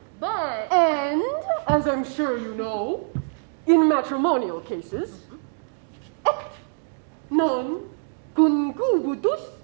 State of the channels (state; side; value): silent; left; digital silence